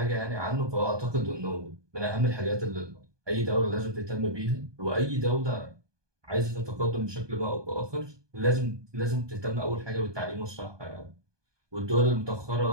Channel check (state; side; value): late; left; 1.2 ms